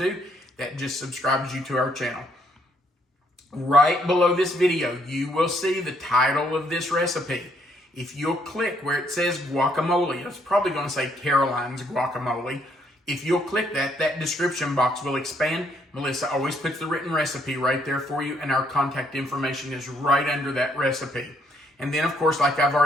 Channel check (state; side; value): normal; both; correlation 0.70